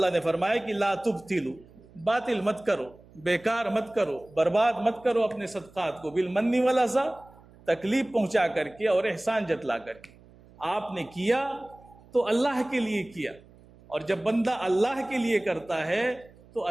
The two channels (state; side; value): noise; right; hum, 25 dB below the sound